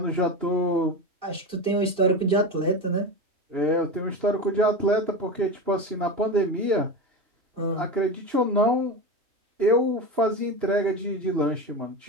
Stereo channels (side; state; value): left; late; 2.9 ms